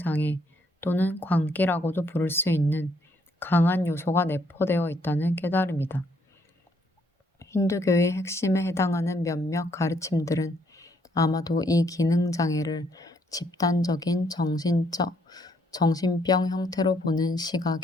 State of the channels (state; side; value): normal; both; correlation 0.69